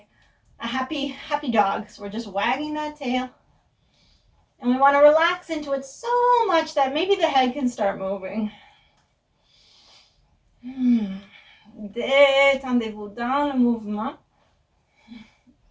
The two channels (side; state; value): both; identical; correlation 1.00